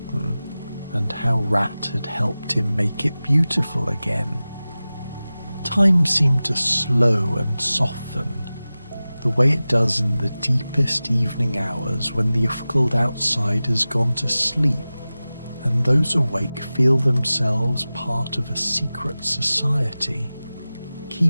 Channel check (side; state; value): both; inverted; correlation -0.96